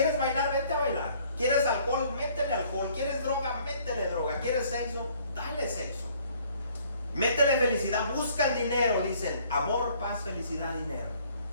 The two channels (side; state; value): both; inverted; correlation -0.59